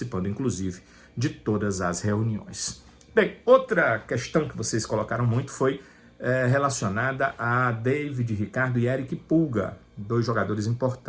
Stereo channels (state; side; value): identical; both; correlation 1.00